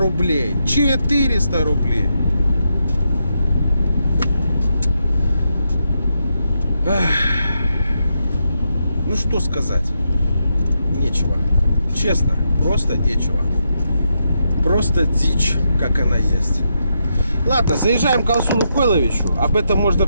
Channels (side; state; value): both; inverted; correlation -0.83